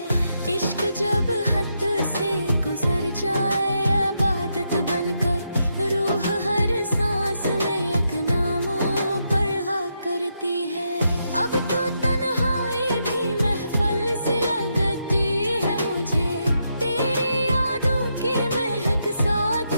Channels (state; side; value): inverted; both; correlation -0.81